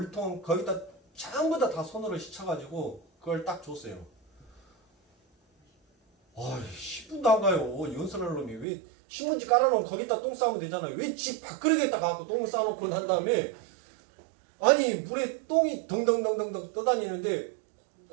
거기다 전부 다 손으로 씻어가지고 그걸 딱 줬어요. 아, 10분도 안 가요. 연설할 놈이 왜 신문지 깔아놓으면 거기다 똥 싸면 되잖아요. 왜 집 밥그릇에다 가고 똥 싸놓고 난 다음에 아니 물에 똥이 덩덩덩덩덩 떠다니는데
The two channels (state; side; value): drops out; left; at 8.7 s